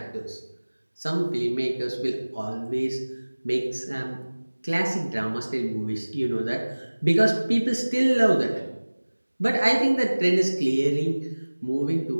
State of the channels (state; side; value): inverted; both; correlation -1.00